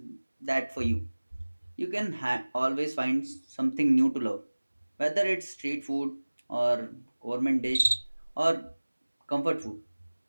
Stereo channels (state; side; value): inverted; both; correlation -1.00